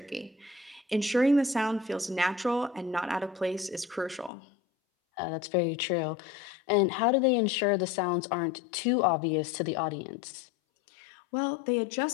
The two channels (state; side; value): drops out; right; at 4.3 s